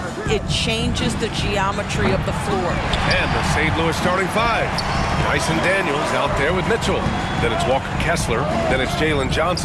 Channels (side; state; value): both; identical; correlation 1.00